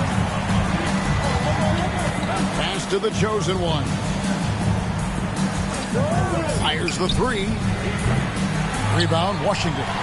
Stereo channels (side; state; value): both; identical; correlation 1.00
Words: Pass to the chosen one. Fires the three. Rebound, Washington.